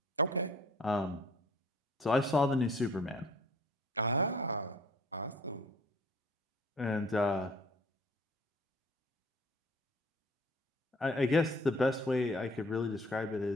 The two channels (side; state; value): both; normal; correlation 0.53